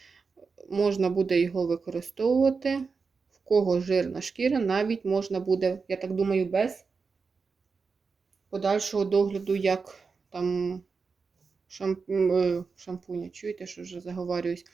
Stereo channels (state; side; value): quieter; left; 4.9 dB